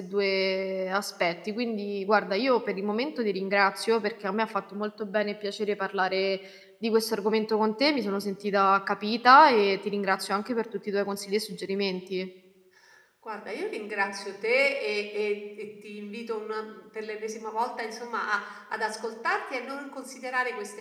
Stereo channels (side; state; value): both; identical; correlation 1.00